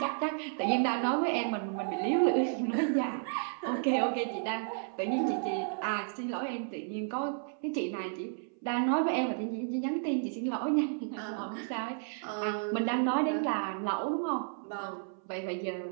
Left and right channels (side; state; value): left; silent; 56 dB below the other